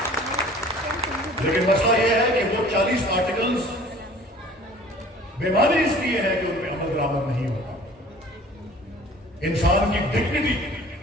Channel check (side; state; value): both; normal; correlation 0.48